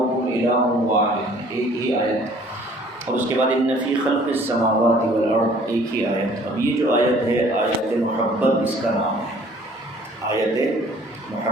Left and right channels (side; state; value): both; normal; correlation 0.55